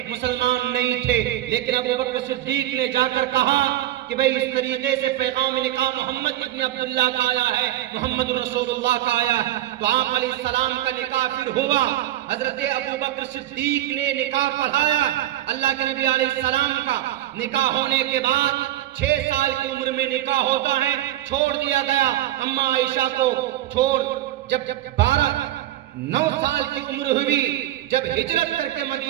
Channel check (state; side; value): quieter; left; 13.9 dB